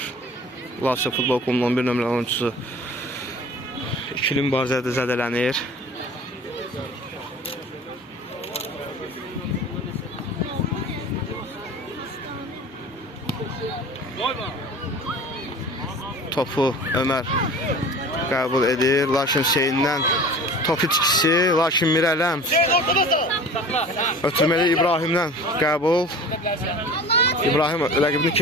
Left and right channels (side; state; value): both; normal; correlation 0.41